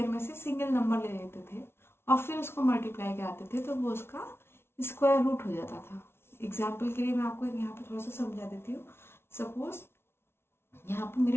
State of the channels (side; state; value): right; late; 0.12 ms